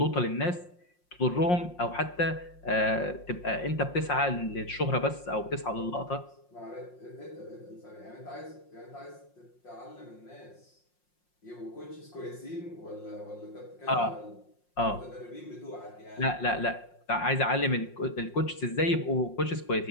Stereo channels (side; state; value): right; late; 5.6 ms